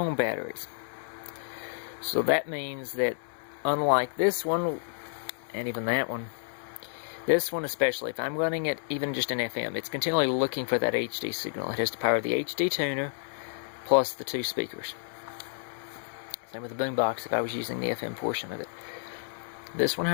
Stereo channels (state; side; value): silent; right; 58 dB below the other